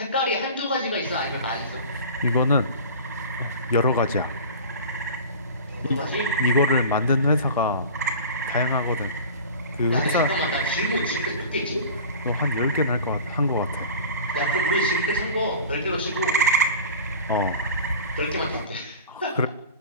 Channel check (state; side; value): inverted; both; correlation -0.37